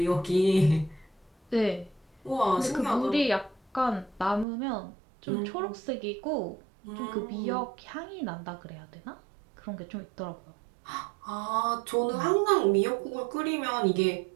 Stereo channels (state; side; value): drops out; left; at 4.5 s